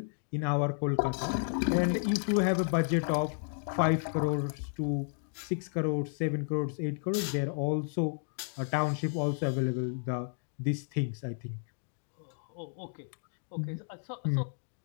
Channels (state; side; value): silent; right; digital silence